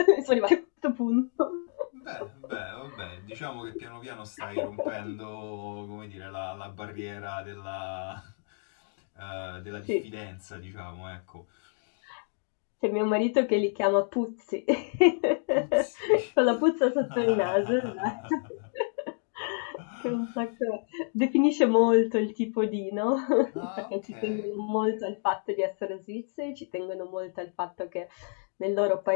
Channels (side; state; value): right; silent; 58 dB below the other